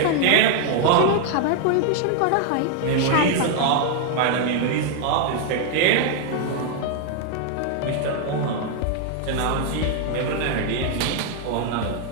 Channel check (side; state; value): both; different; correlation 0.00